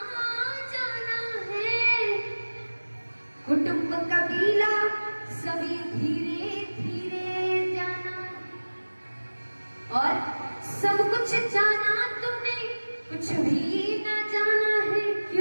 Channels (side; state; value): both; inverted; correlation -1.00